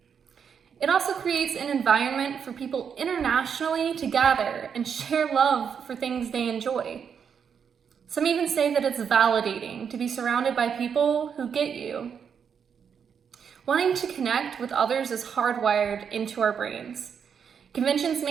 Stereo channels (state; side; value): quieter; left; 7.1 dB